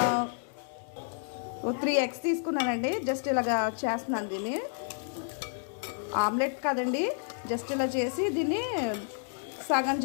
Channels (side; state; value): right; silent; 57 dB below the other